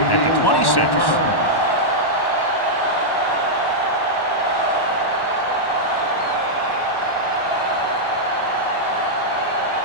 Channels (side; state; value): right; late; 1.1 ms